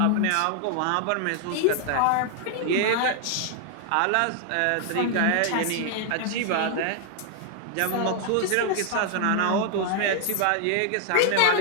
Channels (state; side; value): different; both; correlation 0.00